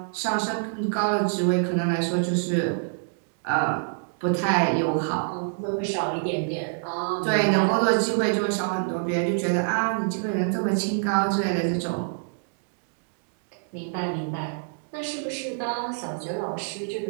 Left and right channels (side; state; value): left; silent; digital silence